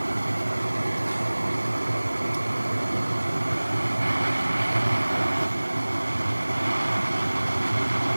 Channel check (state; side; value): inverted; both; correlation -1.00